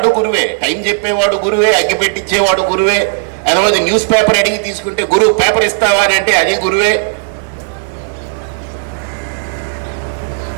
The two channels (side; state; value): left; silent; 71 dB below the other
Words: గురువే. టైం చెప్పేవాడు గురువే, అగ్గిపెట్టించేవాడు గురువే. అదే న్యూస్ పేపర్ అడిగి తీసుకుంటే గురువు పేపర్ ఇస్తావా అని అంటే అది గురువే.